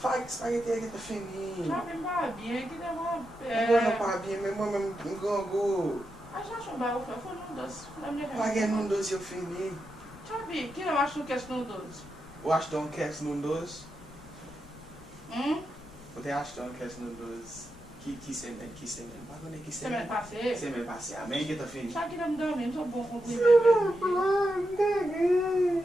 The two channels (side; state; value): left; noise; rumble, 21 dB below the sound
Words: Spaghetti avec le fini. Ça fait pas bien, qui demande. Moi pas bien, mais moi-même, je go. Ah, já chumbar o foi num doce. Paguei num doce eu fini. Sabe, que eu acho que é num doce. Eu acho que não quer num doce. Você acha que não quer num doce? Que semaine? Pas que Semaine passée. Semaine passée. Amém que tá fini. Sabe que não me dormi, não sou bom com comida.